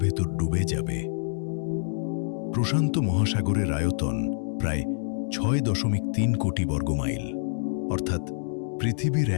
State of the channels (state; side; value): silent; right; digital silence